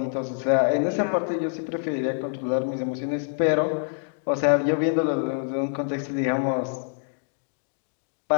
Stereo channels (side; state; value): right; silent; digital silence